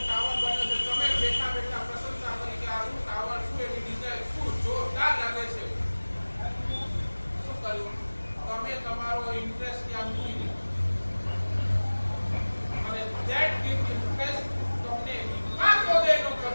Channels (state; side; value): inverted; both; correlation -1.00